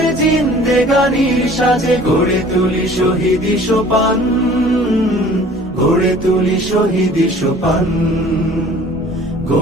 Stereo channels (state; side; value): normal; both; correlation 0.49